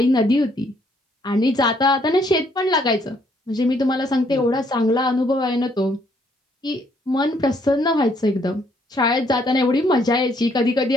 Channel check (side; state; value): both; normal; correlation 0.68